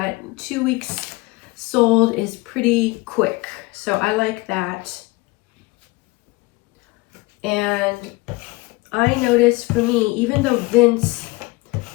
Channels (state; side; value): quieter; right; 22.9 dB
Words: 2 weeks sold is pretty quick. So I like that. And I noticed for me, even though Vince